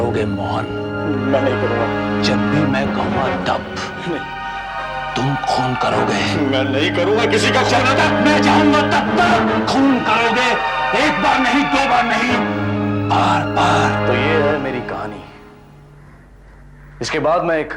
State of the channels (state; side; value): identical; both; correlation 1.00